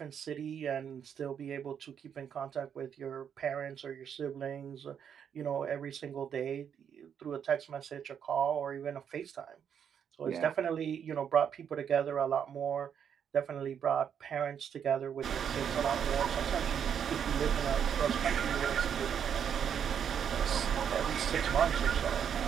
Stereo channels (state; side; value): quieter; left; 8.1 dB